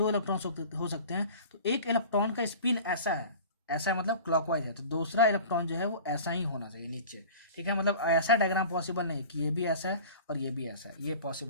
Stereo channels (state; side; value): inverted; both; correlation -0.39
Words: इलेक्ट्रॉन हो सकते हैं तो एक इलेक्ट्रॉन का स्पिन ऐसा है, ऐसा मतलब क्लॉकवाइज है, तो दूसरा इलेक्ट्रॉन जो है वो ऐसा ही होना चाहिए नीचे। ठीक है। मतलब ऐसा डायग्राम पॉसिबल नहीं है कि ये भी ऐसा है और ये भी ऐसा है, ये